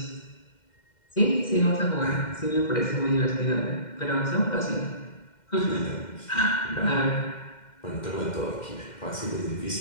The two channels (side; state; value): right; late; 2.1 ms